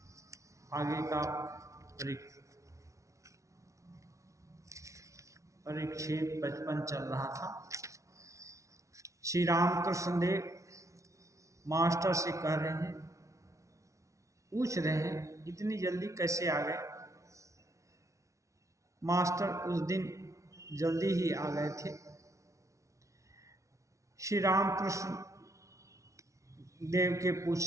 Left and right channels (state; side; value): late; left; 0.15 ms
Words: आगे का परिच्छेद 55 चल रहा था। श्री रामकृष्ण देव मास्टर से कह रहे हैं, पूछ रहे हैं इतनी जल्दी कैसे आ गए। मास्टर उस दिन जल्दी ही आ गए थे। श्री रामकृष्ण देव के